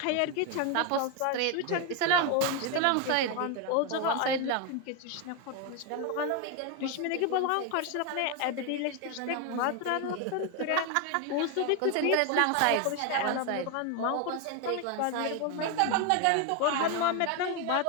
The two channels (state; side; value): different; both; correlation 0.01